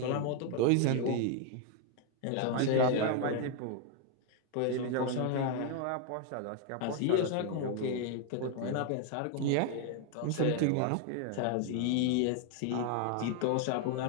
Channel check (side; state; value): both; different; correlation 0.00